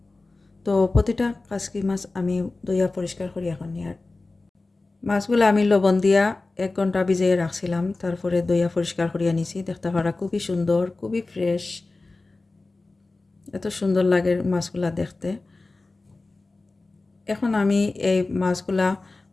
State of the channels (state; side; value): quieter; right; 3.3 dB